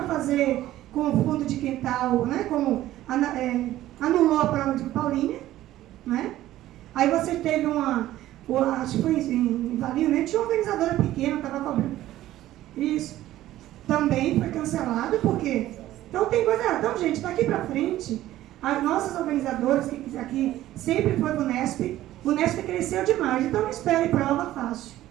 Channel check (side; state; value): left; quieter; 14.4 dB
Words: fazer com o fundo de quintal, né? Como anulou a prova de Paulínia, né? Aí você teve acho que foi em Valinho, né? Tinha uma organizadora pequena, estava cobrando. Isso. Também foi cancelado, porque... Então tem coisa... Então, gente, daqui para frente, as nossas organizadoras, que aqui sempre foi o Unesp cresceu demais. Então não espere prova fácil.